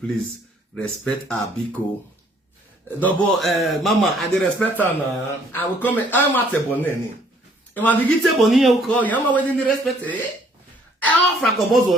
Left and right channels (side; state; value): both; normal; correlation 0.62